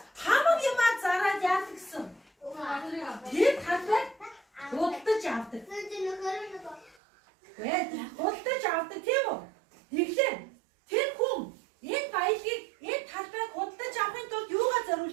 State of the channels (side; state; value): left; drops out; at 7.0 s